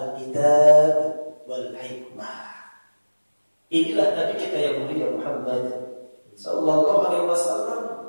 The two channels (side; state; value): both; inverted; correlation -1.00